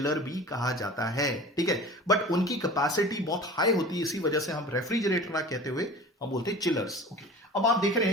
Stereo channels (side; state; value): both; normal; correlation 0.39